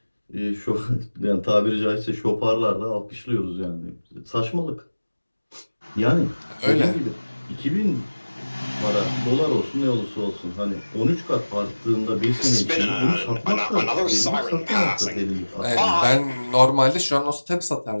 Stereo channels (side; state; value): both; inverted; correlation -1.00